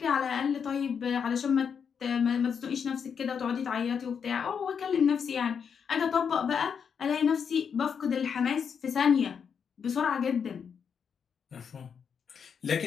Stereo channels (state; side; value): quieter; right; 6.9 dB